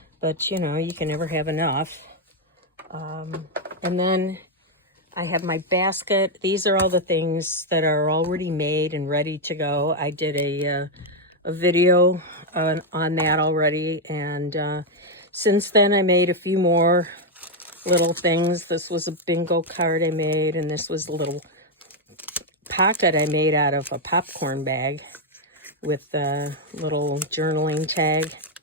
but you know, you can never have enough. And then I have my basket. These are all the things that are already made and ready to go. I did a video on that already, and since then I made a few more little things. This was a bingo card I made, and this was a little pocket I made out of a popcorn bag with a little journaling tag.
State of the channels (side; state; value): both; normal; correlation 0.02